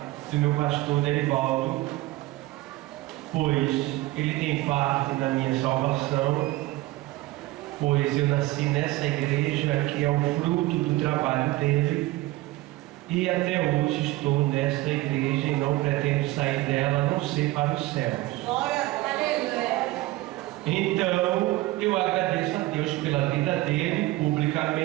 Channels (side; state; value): left; quieter; 18.5 dB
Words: do meu pastor Derivaldo, pois ele tem parte na minha salvação, pois eu nasci nessa igreja que é o fruto do trabalho dele, e até hoje estou nesta igreja e não pretendo sair dela, a não ser para os céus. Então eu agradeço a Deus pela vida dele